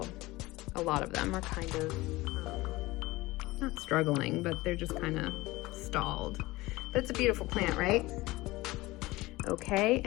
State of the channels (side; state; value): right; quieter; 20.0 dB